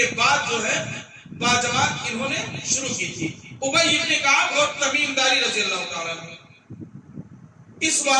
بعد جو ہے باجماعت انہوں نے شروع کی تھی، ابی بن کعب اور تمیم داری رضی اللہ تعالیٰ عنہ. اس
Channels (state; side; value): identical; both; correlation 1.00